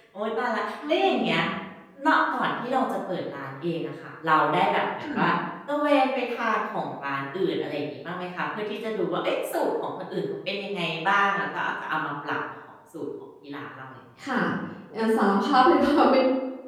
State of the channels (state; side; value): identical; both; correlation 1.00